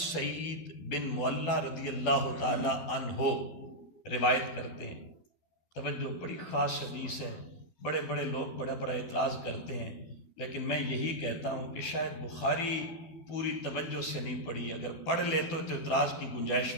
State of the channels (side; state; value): right; late; 12 ms